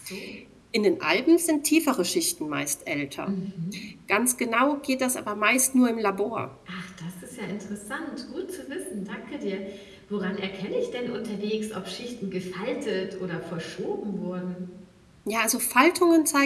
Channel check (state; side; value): identical; both; correlation 1.00